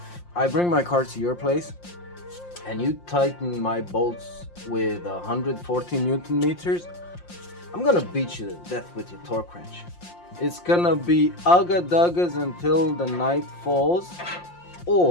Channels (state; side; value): late; right; 5.7 ms